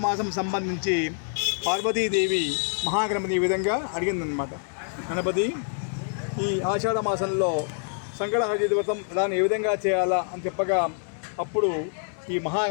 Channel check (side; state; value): right; silent; 61 dB below the other